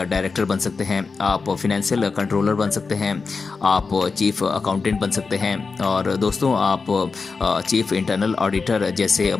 डायरेक्टर बन सकते हैं, आप फिनेंशियल कंट्रोलर बन सकते हैं, आप चीफ अकाउंटेंट बन सकते हैं, और दोस्तों आप चीफ इंटरनल ऑडिटर जैसे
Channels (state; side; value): quieter; right; 4.6 dB